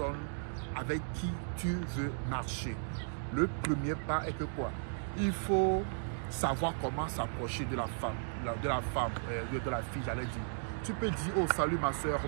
avec qui tu veux marcher. Le premier pas est que quoi? Il faut savoir comment s'approcher de la femme, de la fille, j'allais dire. Tu peux dire, oh salut ma soeur,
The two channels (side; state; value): left; silent; digital silence